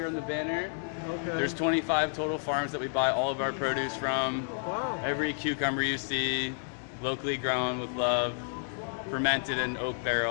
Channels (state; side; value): silent; right; 57 dB below the other